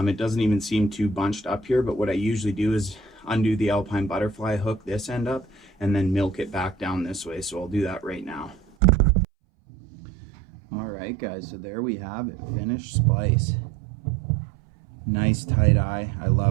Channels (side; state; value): left; drops out; at 8.6 s